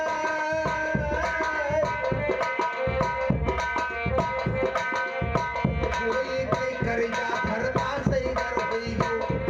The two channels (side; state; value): both; identical; correlation 1.00